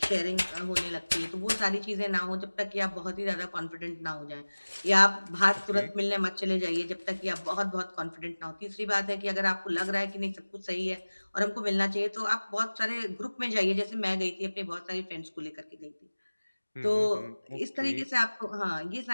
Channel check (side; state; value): both; inverted; correlation -1.00